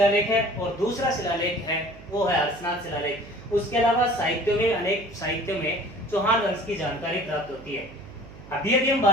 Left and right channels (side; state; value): right; noise; hum, 18 dB below the sound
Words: है और दूसरा शिलालेख है वो है हर्षनाथ शिलालेख। उसके अलावा साहित्यों में, अनेक साहित्यों में चौहान वंश की जानकारी प्राप्त होती है। अभी हम